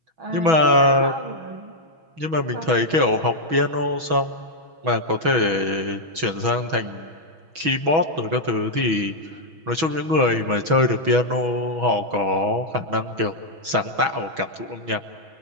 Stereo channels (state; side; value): late; left; 6.2 ms